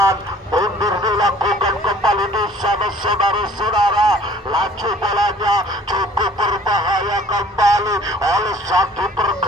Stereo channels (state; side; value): normal; both; correlation 0.52